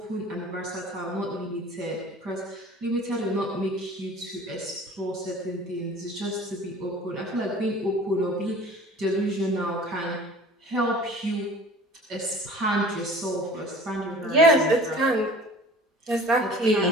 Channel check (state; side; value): normal; both; correlation 0.45